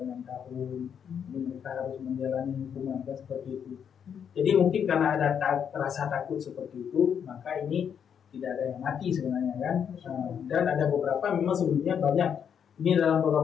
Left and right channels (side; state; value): right; quieter; 7.9 dB